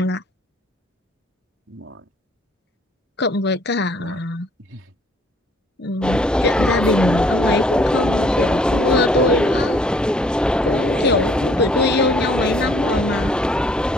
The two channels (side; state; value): both; normal; correlation 0.61